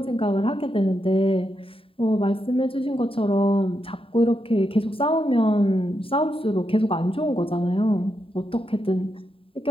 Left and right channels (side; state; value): right; late; 0.27 ms